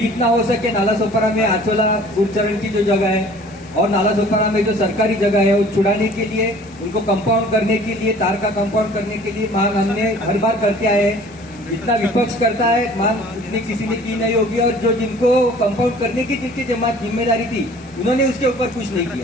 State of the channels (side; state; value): both; normal; correlation 0.50